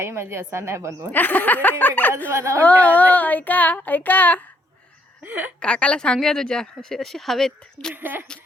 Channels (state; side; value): normal; both; correlation 0.70